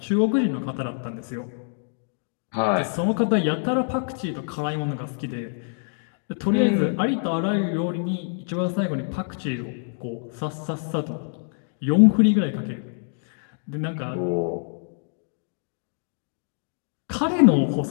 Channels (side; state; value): right; silent; digital silence